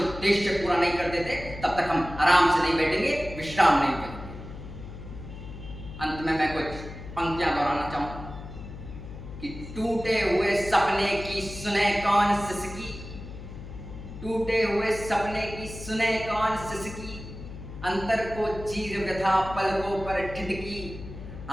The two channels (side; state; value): left; noise; hum, 12 dB below the sound